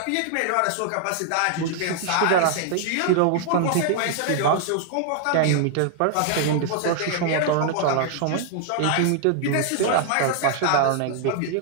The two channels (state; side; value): different; both; correlation 0.00